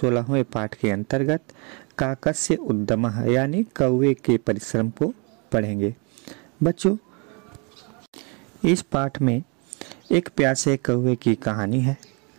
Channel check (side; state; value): left; quieter; 33.3 dB